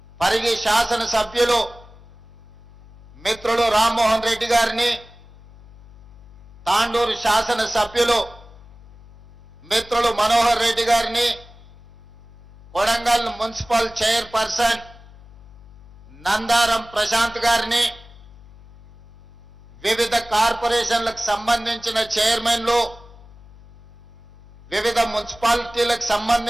పరిగి శాసన సభ్యులు మిత్రులు రామ్మోహన్ రెడ్డి గారిని, తాండూరు శాసన సభ్యులు మిత్రులు మనోహర్ రెడ్డి గారిని, కొడంగల్ మున్సిపల్ చైర్పర్సన్ నందారం ప్రశాంత్ గారిని, వివిధ కార్పొరేషన్లకు సంబంధించిన చైర్మన్లు, వివిధ మున్సిపాలిటీలకు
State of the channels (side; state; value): left; noise; hum, 22 dB below the sound